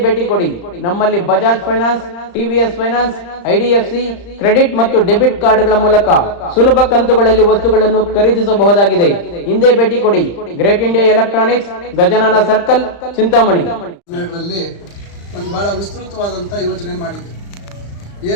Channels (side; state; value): right; late; 35 ms